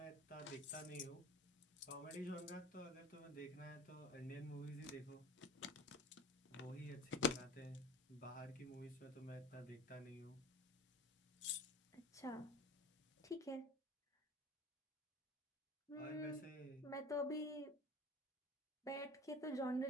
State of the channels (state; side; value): normal; both; correlation 0.38